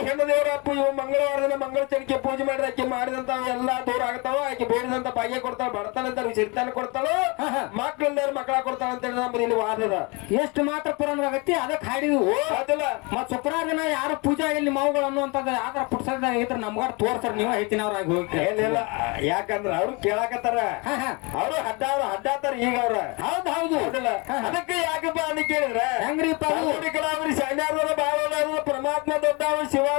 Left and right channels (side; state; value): right; quieter; 28.7 dB